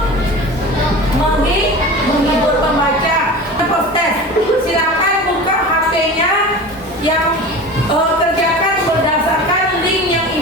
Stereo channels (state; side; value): normal; both; correlation 0.34